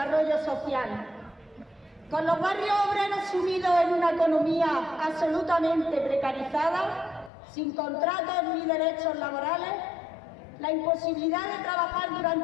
social. Con los barrios obreros sumidos en una economía absolutamente precarizada, sin contratos ni derechos laborales, la imposibilidad de trabajar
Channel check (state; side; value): drops out; right; at 7.3 s